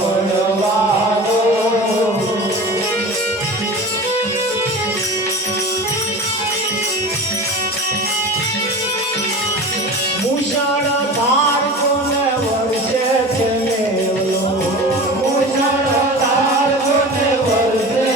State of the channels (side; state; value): both; normal; correlation 0.33